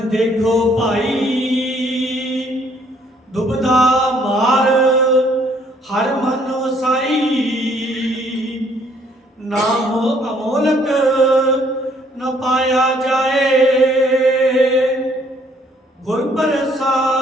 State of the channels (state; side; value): normal; both; correlation 0.64